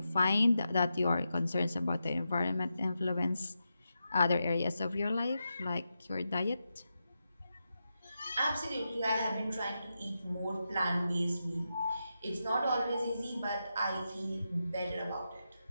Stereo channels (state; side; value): inverted; both; correlation -0.88